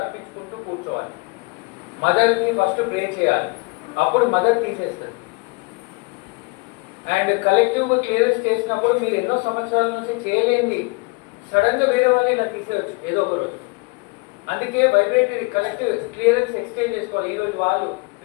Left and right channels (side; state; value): right; quieter; 28.4 dB